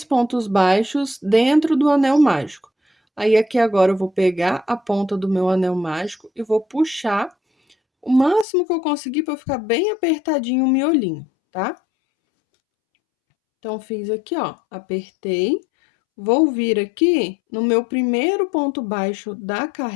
pontos baixos dentro do anel mágico. Aí, aqui agora eu vou pegar a ponta do meu anel mágico e vou puxar o máximo que eu conseguir para ficar bem apertadinho o miolinho, tá? Então, fiz aqui, ó, apertei. Vou vir aqui no meu primeiro ponto baixo da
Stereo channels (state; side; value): drops out; right; at 8.5 s